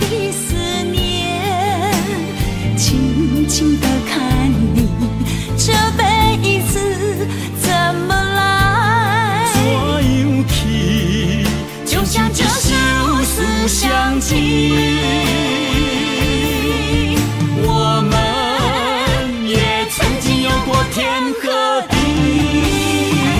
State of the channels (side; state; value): both; identical; correlation 1.00